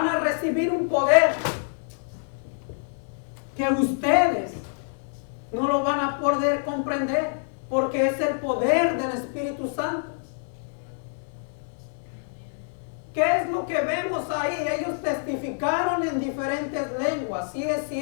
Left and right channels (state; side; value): silent; right; digital silence